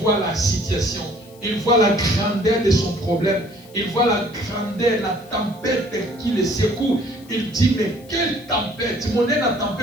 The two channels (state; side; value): noise; left; hiss, 26 dB below the sound